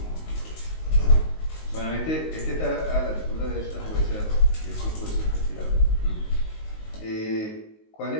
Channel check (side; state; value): right; late; 19 ms